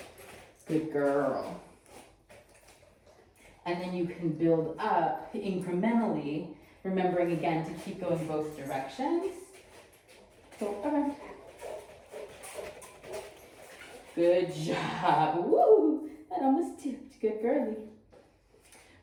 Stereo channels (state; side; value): identical; both; correlation 1.00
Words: Good girl. And then you can build up incrementally, remembering again to keep going both directions. Go around. Good job. Woo! That almost tipped. Good girly.